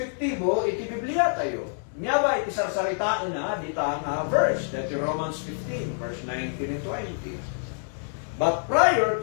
iti Biblia tayo? Nya ba iti sarsaritaan na dita nga verse, that Romans 15 verse 19 and 20. But prior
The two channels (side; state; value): right; silent; 59 dB below the other